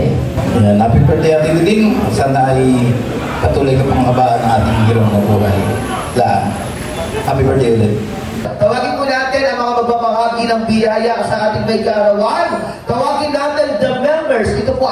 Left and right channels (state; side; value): identical; both; correlation 1.00